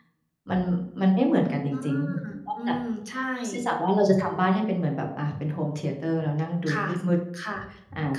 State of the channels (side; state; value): both; identical; correlation 1.00